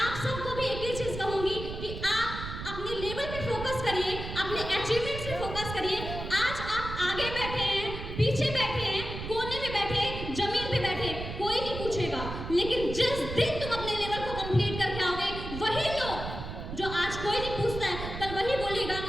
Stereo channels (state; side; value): noise; right; rumble, 7 dB below the sound